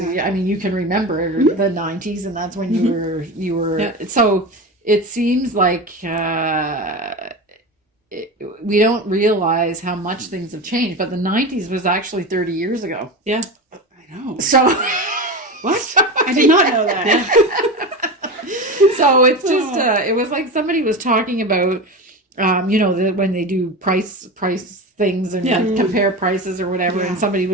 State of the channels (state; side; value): normal; both; correlation 0.24